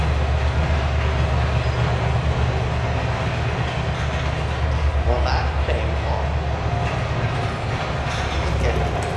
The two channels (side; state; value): both; identical; correlation 1.00